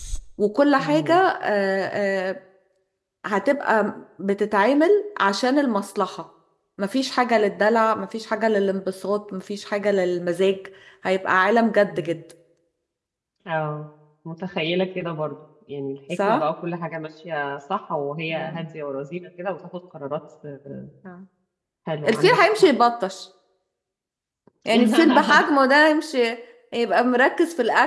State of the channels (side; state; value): both; identical; correlation 1.00